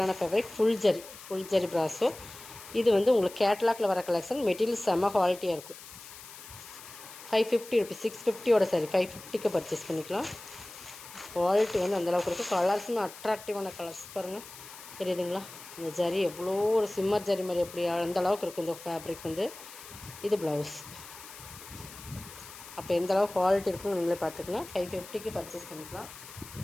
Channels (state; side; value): noise; left; hiss, 16 dB below the sound